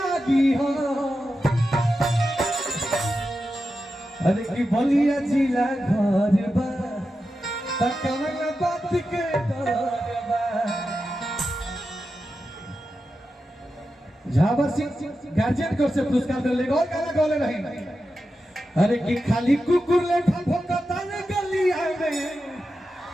हो अरे की बलिया जिला घर बा तकवन बात के डर बा झाबर सिंह गार्जियन को से पुरस्कार दे लेगा और गाना गौले रही अरे की खाली कुकुर ले भोंकता ने गली आवे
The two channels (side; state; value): both; normal; correlation 0.90